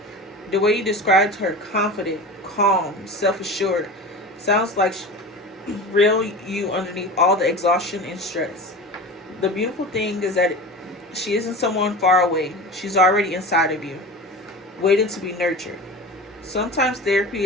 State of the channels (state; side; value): normal; both; correlation 0.32